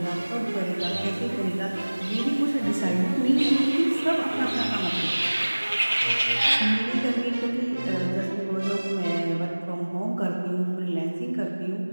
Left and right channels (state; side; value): inverted; both; correlation -1.00